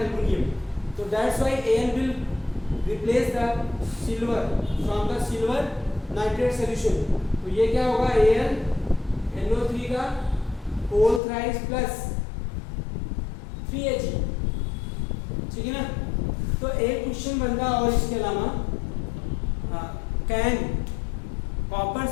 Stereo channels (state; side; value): drops out; right; at 11.2 s